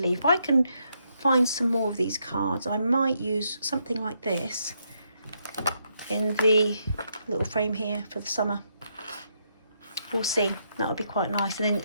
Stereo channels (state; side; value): inverted; both; correlation -0.77